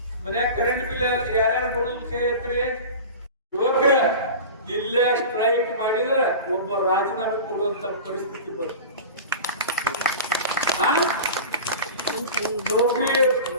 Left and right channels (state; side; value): inverted; both; correlation -0.33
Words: ಮನ್ಯಾಗ ಕರೆಂಟ್ ಬಿಲ್ ಯಾರ್ಯಾರು ಬರೋದು ಕೈ ಎತ್ರಿ. ಯುವಕರ ಇಲ್ಲೇ ಸ್ಟ್ರೈಕ್ ಮಾಡಿದ್ರೆ ಒಬ್ಬ ರಾಜೀನಾಮೆ ಕೊಡುವಂತ ಪರಿಸ್ಥಿತಿ ಬರುತ್ತೆ.